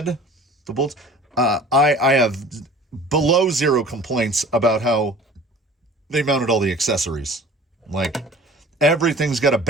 the bolts, I have below zero complaints about how they mounted all the accessories. Like, everything's got a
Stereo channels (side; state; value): both; normal; correlation 0.44